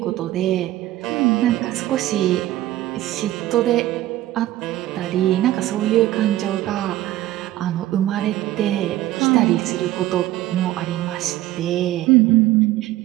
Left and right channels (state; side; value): quieter; left; 15.0 dB